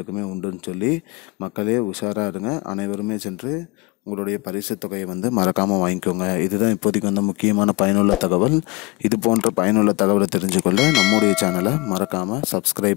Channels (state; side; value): quieter; right; 24.0 dB